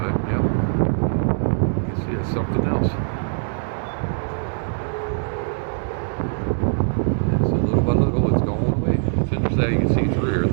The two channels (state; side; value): silent; left; digital silence